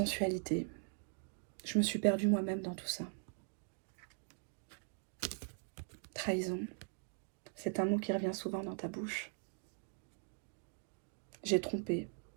Je me suis perdue moi-même dans tout ça. Trahison, c'est un mot qui revient souvent dans ta bouche. J'ai trompé,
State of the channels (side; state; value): left; silent; 50 dB below the other